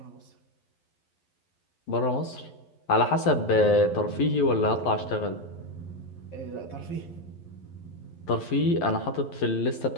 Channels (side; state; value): right; late; 11 ms